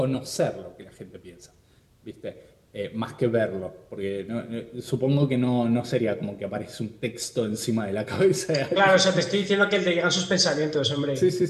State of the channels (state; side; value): identical; both; correlation 1.00